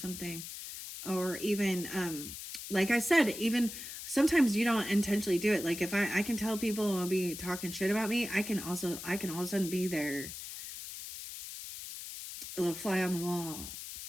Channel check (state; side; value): noise; left; hiss, 10 dB below the sound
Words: or even, like I said, even sometimes you don't intentionally do it. Like if I can tell people will be talking shit about me, I can all of a sudden be there, a little fly on the wall.